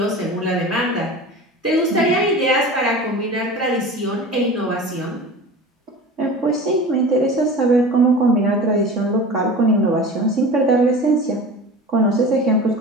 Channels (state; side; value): normal; both; correlation 0.35